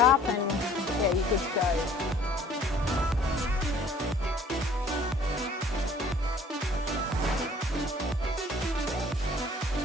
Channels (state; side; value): normal; both; correlation 0.54